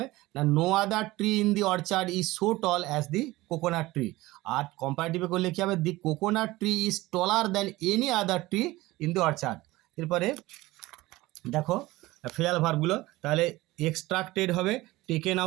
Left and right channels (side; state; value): left; quieter; 19.0 dB